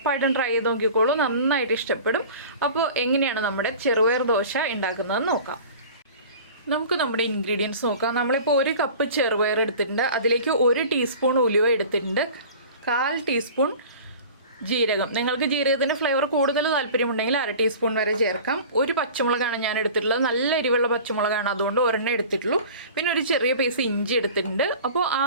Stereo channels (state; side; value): inverted; both; correlation -0.41